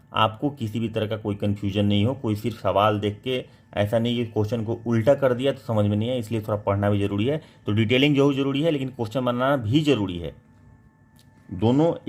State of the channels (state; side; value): identical; both; correlation 1.00